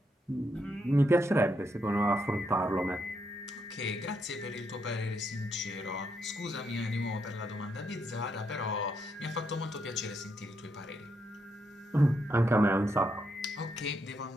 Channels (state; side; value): normal; both; correlation 0.79